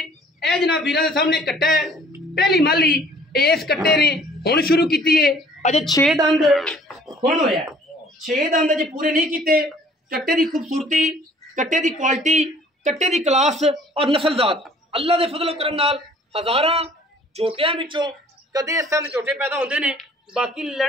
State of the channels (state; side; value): normal; both; correlation 0.55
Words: जनाब वीरां दे सामने कट्टा है। पहली माली इस कट्टे ने हुण शुरू की है, अजे 6 दंद हुण होया, 6 दंद अजे पूरे नहीं किए। कट्टे की खूबसूरती, कट्टे की क्वालिटी, कट्टे की क्लास और नस्ल जात अल्लाह के फजलो करम नाल हज़ारां झोटियां विचों कदे इस तरह के झोटे पैदा होंदे ने। बाकी